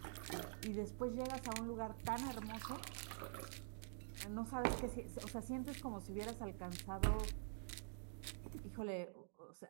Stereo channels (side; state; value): left; silent; digital silence